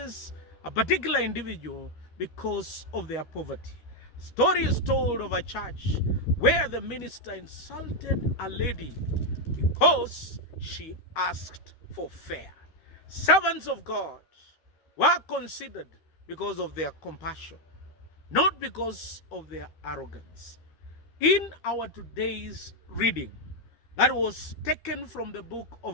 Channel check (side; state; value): right; late; 12 ms